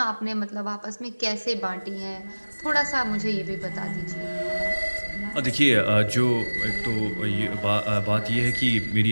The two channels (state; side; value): inverted; both; correlation -1.00